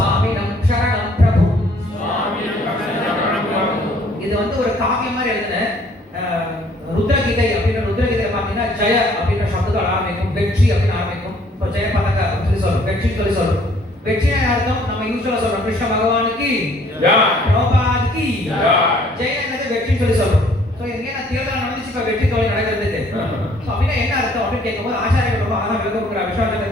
சரணம் பிரபும். இது வந்து ஒரு காவியம் மாதிரி எழுதுன ருத்ரகீதை அப்படின்ற ருத்ரகீதை பார்த்தீங்கன்னா ஜெய அப்படின்ற சப்தத்தோட ஆரம்பிக்கும், வெற்றி அப்படின்னு ஆரம்பிக்கும். இப்போ ஜெய பதக அப்படின்னு சொல்லி சொல்றோம், வெற்றி சொல்லி சொல்றோம். வெற்றினா அர்த்தம் நம்ம யூஸ்வலா சொல்றோம் கிருஷ்ண பகவானுக்கு பிரபாதுக்கு ஜெயங்கிறது வெற்றி சொல்லி சொல்றோம். ஸோ எங்கே நான் தேர்தல் நடந்துச்சு இப்போ வெற்றி தோல்வி நடக்கிறதுக்கு. ஸோ அப்படின்னா என்ன அர்த்தம் அப்படின்னு கேட்கும்போது ஆச்சாரியர்கள் ரொம்ப அழகாக விளக்கம் கொடுக்குற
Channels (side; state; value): both; normal; correlation 0.60